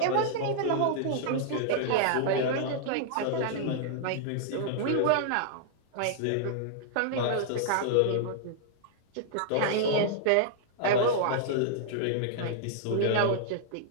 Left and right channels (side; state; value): both; different; correlation -0.01